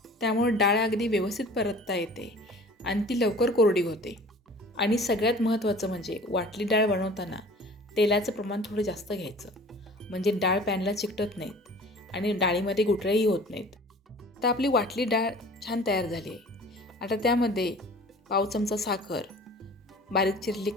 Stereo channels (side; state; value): both; normal; correlation 0.45